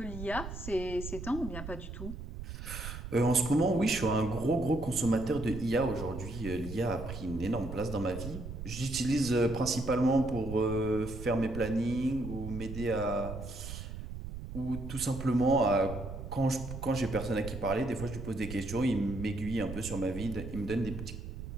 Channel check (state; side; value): noise; right; rumble, 9 dB below the sound